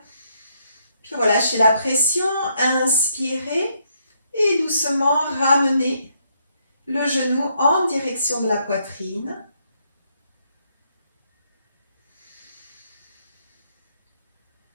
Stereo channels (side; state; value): both; inverted; correlation -0.74